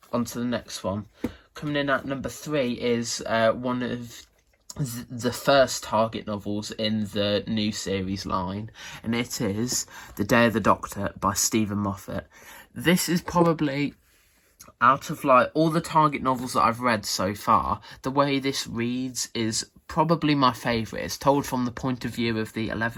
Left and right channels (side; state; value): both; identical; correlation 1.00